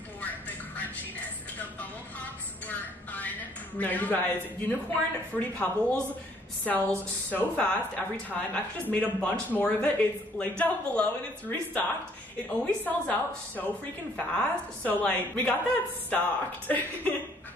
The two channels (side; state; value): both; normal; correlation 0.62